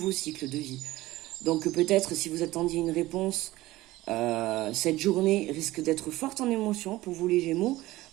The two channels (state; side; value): quieter; left; 17.7 dB